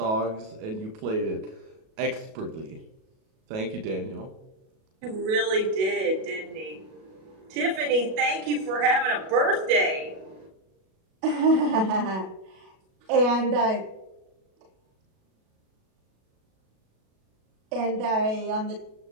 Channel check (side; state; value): left; late; 37 ms